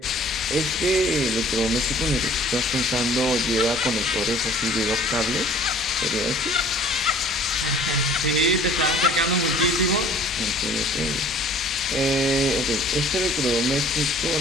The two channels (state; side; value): normal; both; correlation 0.51